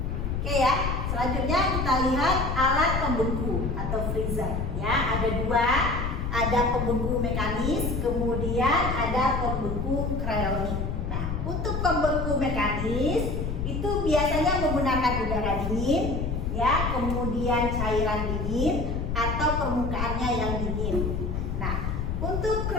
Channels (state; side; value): noise; left; rumble, 2 dB below the sound